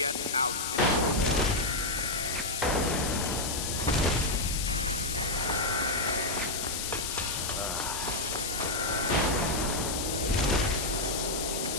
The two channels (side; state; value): left; noise; hiss, 2 dB below the sound